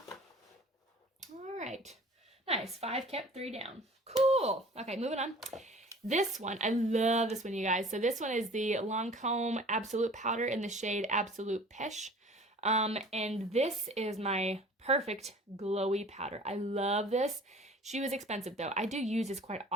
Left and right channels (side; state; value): both; normal; correlation 0.46